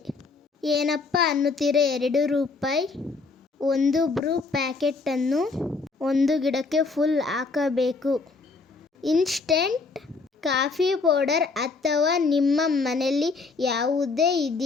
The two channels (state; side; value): quieter; right; 4.2 dB